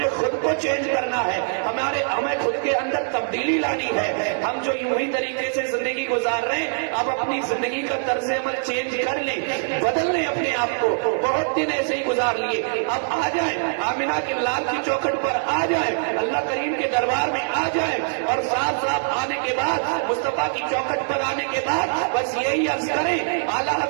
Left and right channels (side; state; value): left; silent; digital silence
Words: خود کو چینج کرنا ہے، ہمیں خود کے اندر تبدیلی لانی ہے۔ ہم جو یوں ہی طریقے سے زندگی گزار رہے ہیں، اب اپنی زندگی کا طرز عمل چینج کر لیں، بدل لیں اپنے آپ کو۔ بہت دن ایسے ہی گزار لیے، اب آ جائیں آمنہ کے لال کی چوکھٹ پر، آ جائیں اللہ کریم کے دربار میں، آ جائیں اور صاف صاف آنے کے بعد مصطفیٰ کی چوکھٹ پر آنے کے بعد بس یہی عرض کریں، اعلیٰ